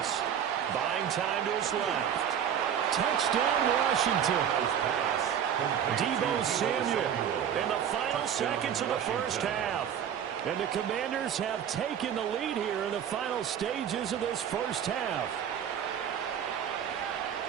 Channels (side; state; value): left; quieter; 8.9 dB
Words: Buying time to his left. Touchdown, Washington. Deebo Samuel in the final seconds of the first half. And the Commanders have taken the lead here in the final stages of this first half.